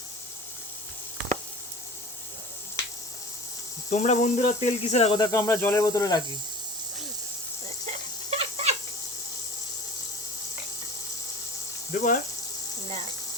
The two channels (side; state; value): both; normal; correlation 0.39